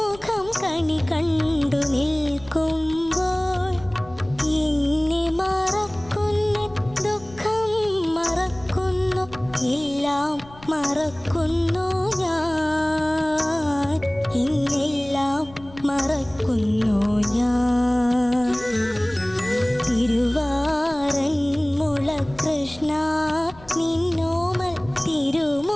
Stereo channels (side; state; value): left; noise; rumble, 21 dB below the sound